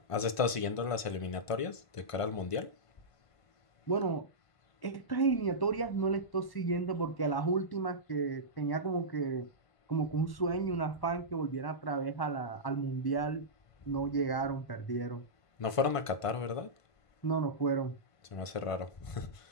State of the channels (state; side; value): late; right; 1.5 ms